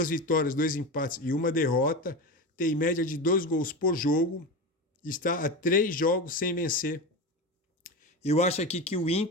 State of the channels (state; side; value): normal; both; correlation 0.22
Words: vitórias, 2 empates e 1 derrota. Tem média de 2 gols por jogo. Está a 3 jogos sem vencer. Eu acho aqui que o